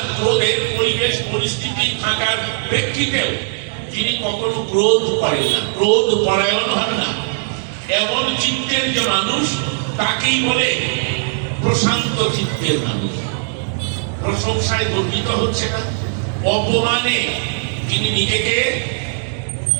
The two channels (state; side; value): silent; left; digital silence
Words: ক্রোধের পরিবেশ পরিস্থিতি থাকার প্রেক্ষিতেও যিনি কখনো ক্রোধ করেন না, ক্রোধ পরায়ণ হন না, এমন চিত্তের যে মানুষ তাকেই বলে প্রশান্ত চিত্তের মানুষ। প্রশংসায় গর্বিত হচ্ছে না, অপমানে তিনি নিজেকে